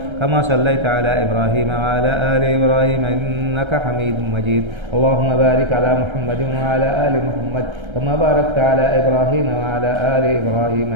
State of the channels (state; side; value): late; left; 1.3 ms